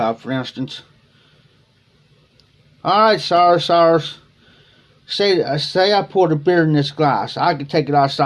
for instance. Alright, Cyrus. Say I poured a beer in this glass. I can take it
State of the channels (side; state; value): both; identical; correlation 1.00